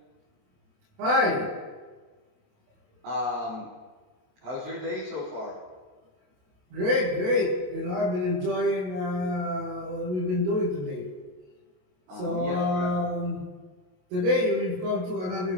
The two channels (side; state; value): left; late; 27 ms